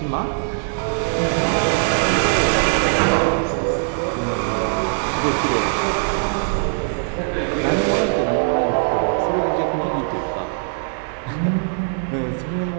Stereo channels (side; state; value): left; silent; 63 dB below the other